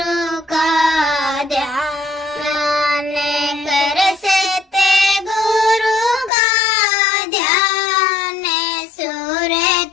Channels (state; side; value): drops out; right; at 6.3 s